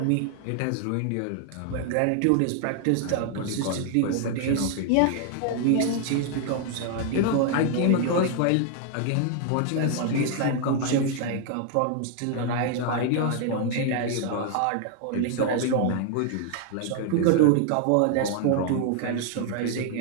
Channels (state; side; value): different; both; correlation 0.00